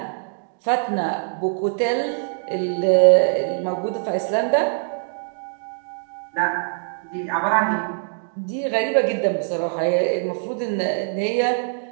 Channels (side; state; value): left; silent; digital silence